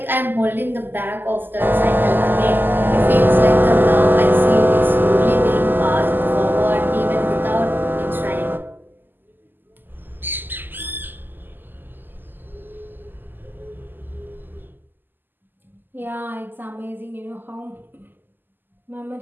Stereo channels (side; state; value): left; late; 0.092 ms